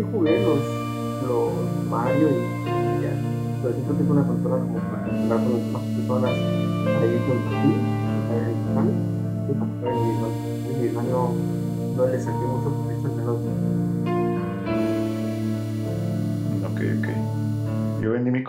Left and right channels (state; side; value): identical; both; correlation 1.00